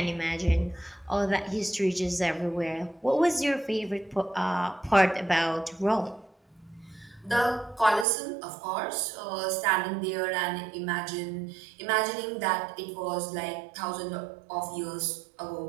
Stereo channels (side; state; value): left; drops out; at 8.1 s